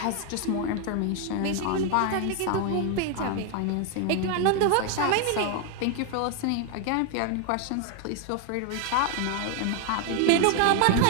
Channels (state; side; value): different; both; correlation 0.01